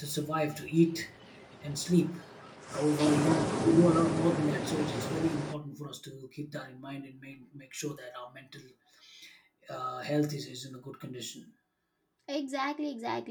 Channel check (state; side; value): identical; both; correlation 1.00